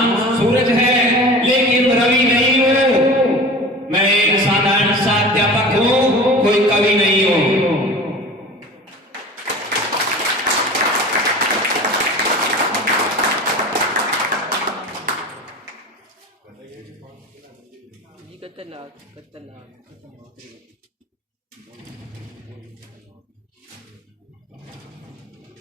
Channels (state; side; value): normal; both; correlation 0.37